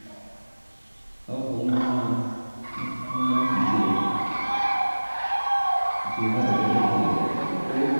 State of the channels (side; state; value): both; inverted; correlation -1.00